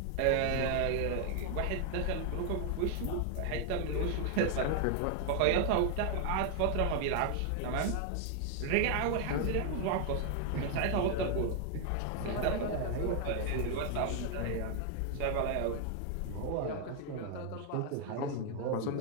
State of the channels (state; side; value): different; both; correlation 0.00